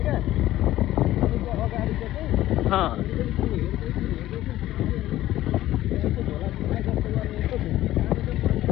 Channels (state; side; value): quieter; right; 14.7 dB